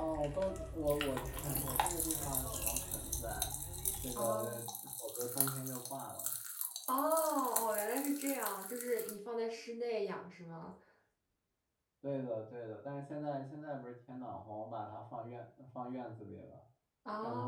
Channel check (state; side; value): identical; both; correlation 1.00